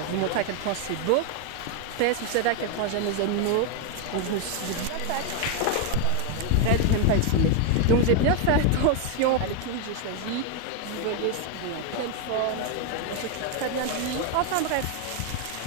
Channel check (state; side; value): different; both; correlation 0.01